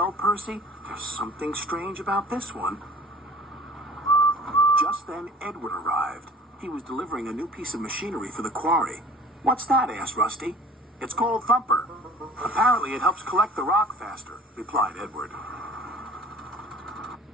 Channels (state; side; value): normal; both; correlation 0.46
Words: Percy, there's something strange about this one. Just then, Edward arrived. He was delivering a new piece of machinery for the quarry. What's that? Asked Rusty. It's called Thumper. Apparently it helps collect the rock faster, replied Edward.